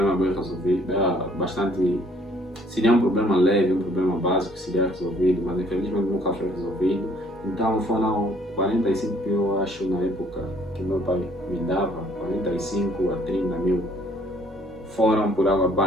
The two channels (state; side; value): normal; both; correlation 0.61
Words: bem resolvido, seria um problema leve, um problema básico que seria resolvido, mas infelizmente nunca foi resolvido. Então foram 45 mil, eu acho, na época que meu pai me dava, 45 a 30 mil, foram por água